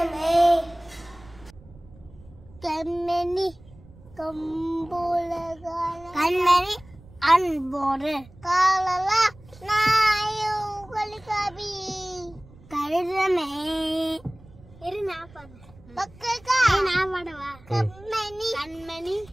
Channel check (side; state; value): right; noise; rumble, 23 dB below the sound